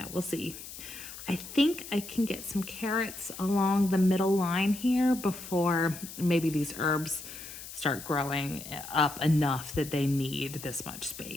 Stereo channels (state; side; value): noise; left; hiss, 12 dB below the sound